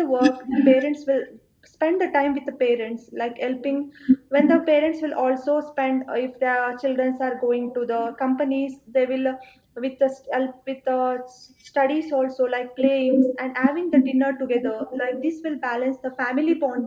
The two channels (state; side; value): identical; both; correlation 1.00